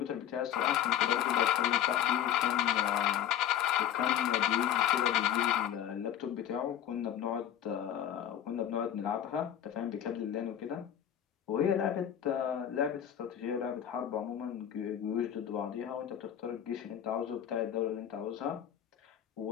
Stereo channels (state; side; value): quieter; right; 10.3 dB